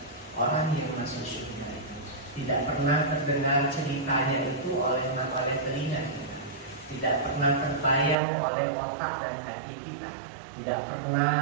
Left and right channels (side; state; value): left; drops out; at 8.2 s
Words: orang yang masuk surga itu. Tidak pernah terdengar ceritanya itu oleh telinga kita. Tidak pernah terbayang oleh otak dan hati kita. Tidak